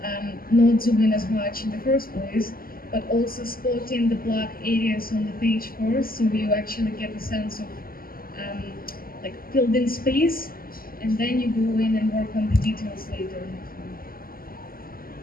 not zoom in as much in the first place, but also spotting the black areas on the page first, so you actually get a sense of like filled in space, and then you go in and work on the details later.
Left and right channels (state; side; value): late; right; 0.42 ms